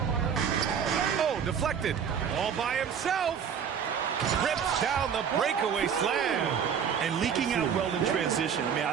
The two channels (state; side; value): quieter; left; 7.6 dB